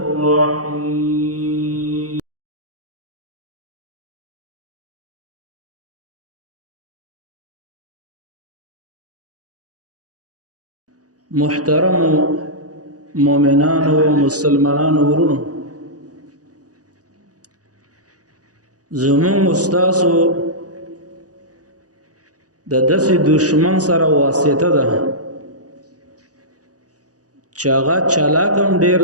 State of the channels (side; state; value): left; late; 0.67 ms